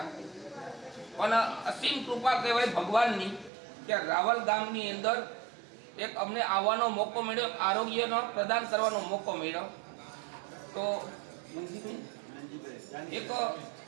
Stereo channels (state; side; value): drops out; left; at 3.5 s